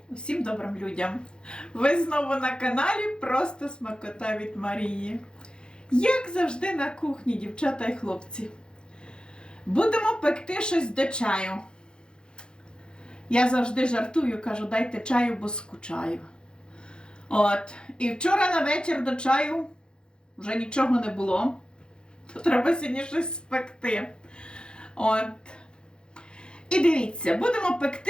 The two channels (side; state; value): right; late; 0.050 ms